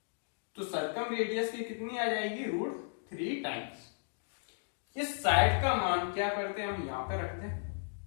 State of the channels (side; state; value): right; silent; digital silence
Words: तो सर्कम रेडियस की कितनी आ जाएगी? √3 टाइम्स। इस साइड का मान क्या करते हैं हम यहां पे रखते हैं,